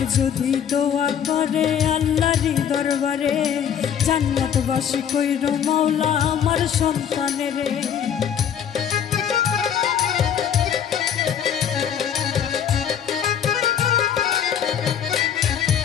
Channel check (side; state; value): right; quieter; 8.6 dB